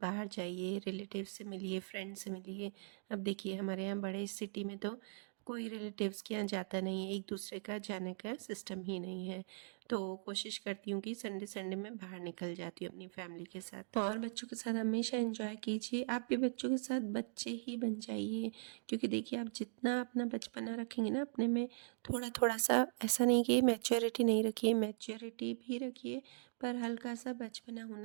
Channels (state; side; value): silent; left; digital silence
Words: बाहर जाइए, रिलेटिव से मिलिए, फ्रेंड से मिलिए। अब देखिए हमारे यहाँ बड़े सिटी में तो कोई रिलेटिव्स के यहाँ जाता नहीं है, एक दूसरे का जाने का सिस्टम ही नहीं है। तो कोशिश करती हूँ कि संडे संडे में बाहर निकल जाती हूँ अपनी फैमिली के साथ। और बच्चों के साथ हमेशा एंजॉय कीजिए, आप भी बच्चों के साथ बच्चे ही बन जाइए। क्योंकि देखिए आप जितना अपना बचपना रखेंगे ना अपने में, थोड़ा थोड़ा सा, ऐसा नहीं कि मैच्योरिटी नहीं रखिए, मैच्योरिटी भी रखिए, पर हल्का सा बचपना